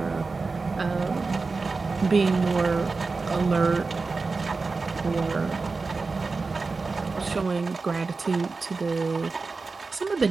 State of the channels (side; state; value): left; quieter; 4.1 dB